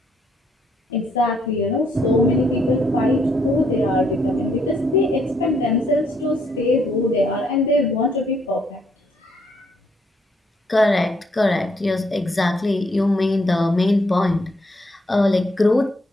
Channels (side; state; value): both; normal; correlation 0.72